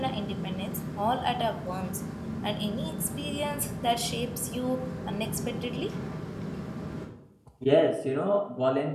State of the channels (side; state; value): both; identical; correlation 1.00